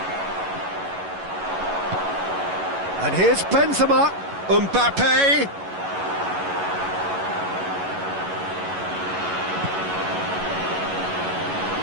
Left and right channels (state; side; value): late; left; 11 ms